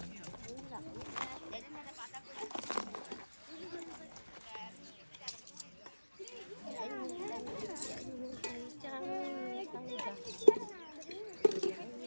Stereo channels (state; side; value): inverted; both; correlation -1.00